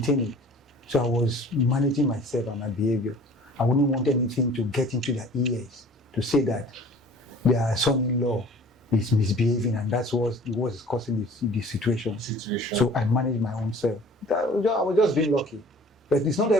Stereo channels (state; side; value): normal; both; correlation 0.48